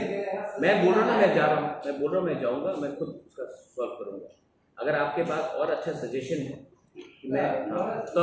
मैं बोल रहा हूँ ना, मैं जा रहा हूँ, मैं जाऊँगा, मैं खुद उसका सॉल्व करूँगा। अगर आपके पास और अच्छा सजेशन है कि मैं, तो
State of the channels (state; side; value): identical; both; correlation 1.00